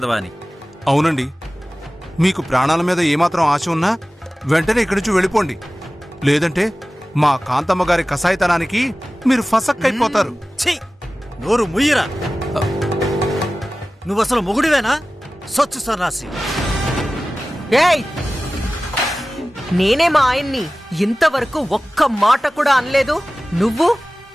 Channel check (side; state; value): both; normal; correlation 0.96